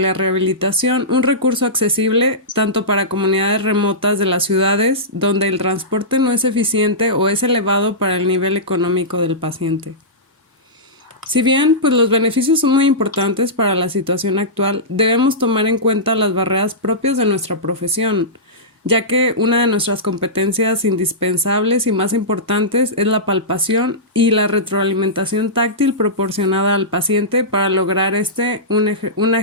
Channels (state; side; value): normal; both; correlation -0.16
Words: un recurso accesible tanto para comunidades remotas de las ciudades donde el transporte no es eficiente o es elevado para el nivel económico del paciente. Si bien pues los beneficios son muy importantes para la situación actual, debemos tomar en cuenta las barreras propias de nuestra profesión, ya que una de nuestras competencias indispensables y más importantes es la palpación y la retroalimentación táctil proporcionada al paciente para lograr una